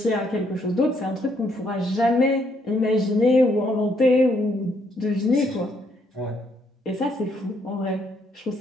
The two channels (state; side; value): normal; both; correlation 0.71